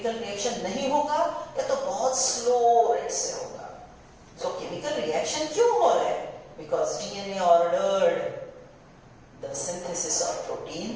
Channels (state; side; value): identical; both; correlation 1.00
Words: रिएक्शन नहीं होगा या तो बहुत स्लो रेट से होगा. सो केमिकल रिएक्शन क्यों हो रहा है? Because DNA ordered the synthesis of